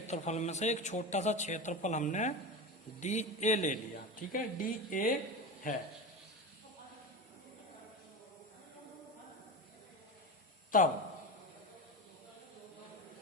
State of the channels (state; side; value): normal; both; correlation 0.24